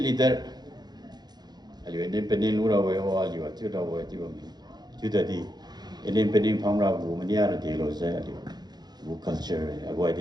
leader aliu independent lu ra we o aliu chu da we ti ba mi chu da di independent phang ra ko mania ra di lo sai aliu ko culture ko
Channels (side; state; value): left; late; 0.20 ms